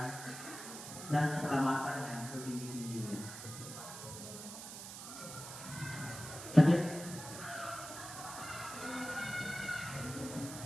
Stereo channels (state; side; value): noise; right; hiss, 10 dB below the sound